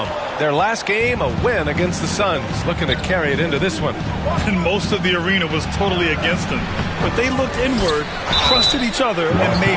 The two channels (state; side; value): identical; both; correlation 1.00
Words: Their last game, a win against the Suns. Looking to carry it into this one. And most of the arena was totally against them. But they looked inward, trusted each other, and made